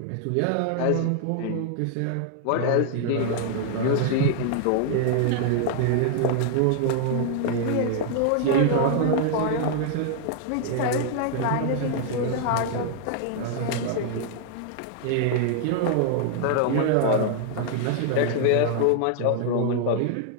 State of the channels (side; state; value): both; different; correlation 0.00